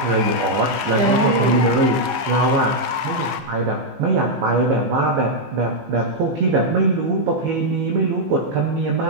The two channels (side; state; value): left; late; 15 ms